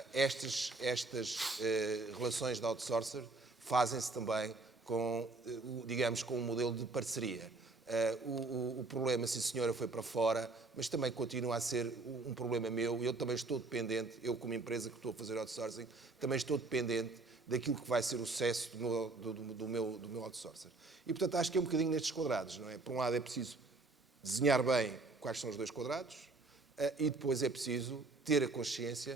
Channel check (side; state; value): left; quieter; 3.4 dB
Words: Estas relações de outsourcer fazem-se também com, digamos, com um modelo de parceria. O problema, sim senhora, foi para fora, mas também continua a ser um problema meu. Eu também estou dependente, eu como empresa que estou a fazer outsourcing, também estou dependente daquilo que vai ser o sucesso do meu outsourcer. E, portanto, acho que é um bocadinho nestes quadrados, não é? Por um lado é preciso desenhar bem quais são os 2 quadrados e depois é preciso ter a